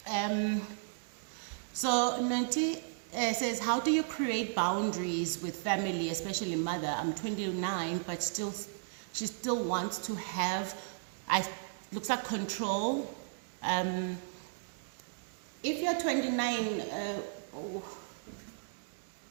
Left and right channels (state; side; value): silent; left; digital silence